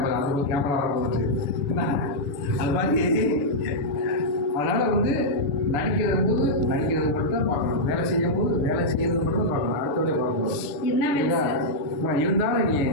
அது ஒரு கேமரா வர போச்சு அது மாதிரி. அதனால் வந்து நடிக்கிறது போது நடிக்கிறது மட்டும் தான் பார்க்கணும். வேலை செய்யும் போது வேலை செய்யறது மட்டும் தான் பார்க்கணும். அடுத்தவங்களே பார்க்கணும். இருந்தாலும் நீ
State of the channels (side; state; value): right; late; 6.8 ms